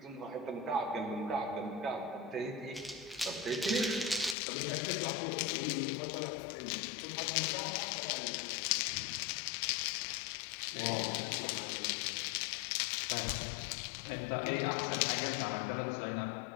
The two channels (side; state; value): right; drops out; at 4.4 s